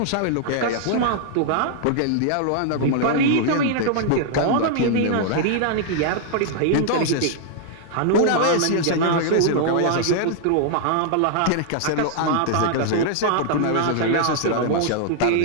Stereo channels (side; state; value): both; different; correlation -0.01